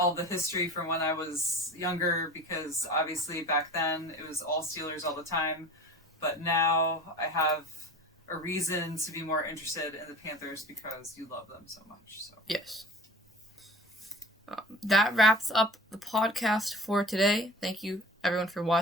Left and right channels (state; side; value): normal; both; correlation 0.38